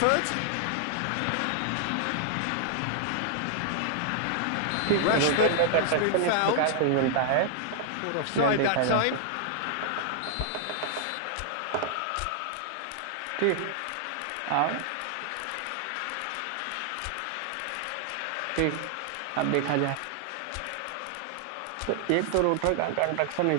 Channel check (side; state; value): both; different; correlation 0.00